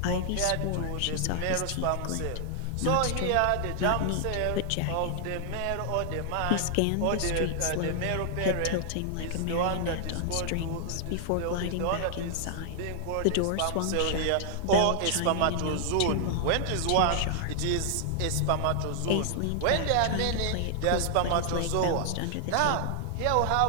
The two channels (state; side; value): different; both; correlation 0.00